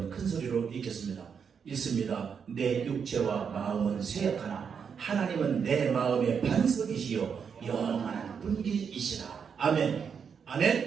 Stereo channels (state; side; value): quieter; left; 6.7 dB